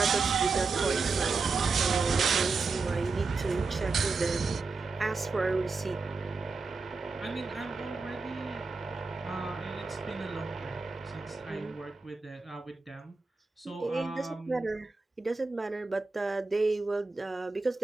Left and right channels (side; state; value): left; quieter; 4.2 dB